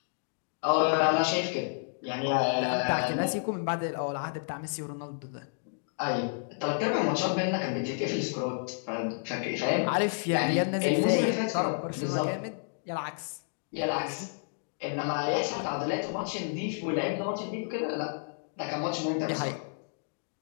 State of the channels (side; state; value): right; silent; digital silence